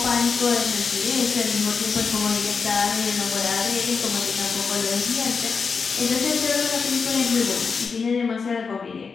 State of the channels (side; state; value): right; quieter; 5.2 dB